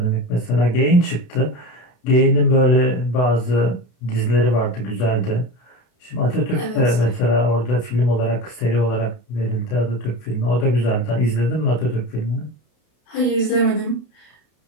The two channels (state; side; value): late; right; 32 ms